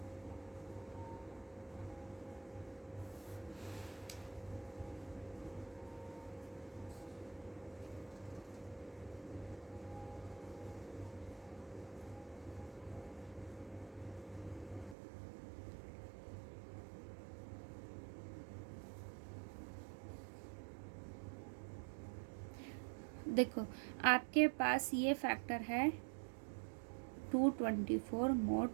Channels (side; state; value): left; drops out; at 15.0 s